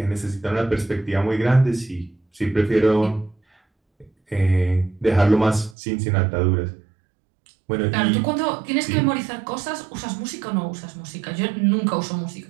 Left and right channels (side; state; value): left; drops out; at 5.8 s